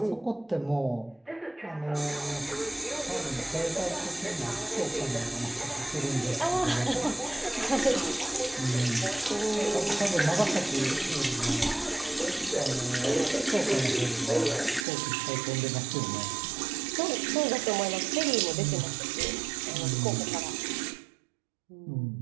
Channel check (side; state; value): left; drops out; at 14.9 s